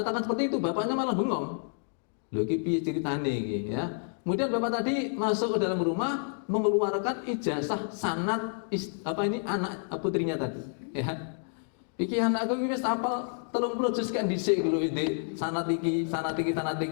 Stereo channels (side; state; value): right; silent; 58 dB below the other